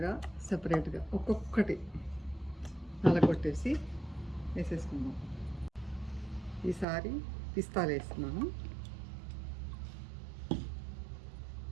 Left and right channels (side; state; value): left; drops out; at 6.9 s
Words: సెపరేట్గా ఒక్కొక్కటి నలగొట్టేసి వేసేసుకుందాం. ఈసారి పిస్తాలు వేస్తున్నాను.